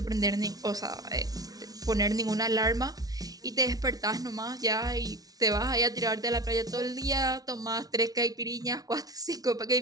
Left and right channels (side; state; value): left; late; 0.18 ms